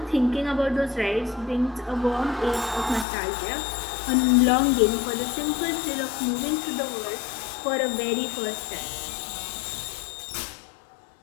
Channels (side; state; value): right; drops out; at 3.1 s